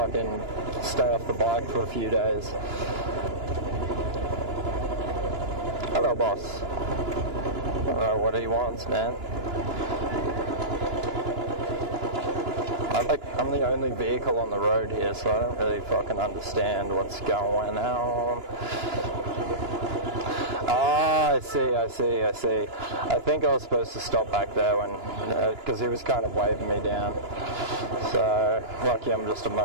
stay off the bike for a few days. Hello, boss. I don't know what he wants, man. I'm the only vehicle on the road here, so I don't really fucking understand what's going on. Ah, I see. I think I was supposed to stop back there when, because he was kind of waving me down. So, lucky I'm just a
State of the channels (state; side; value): late; left; 2.9 ms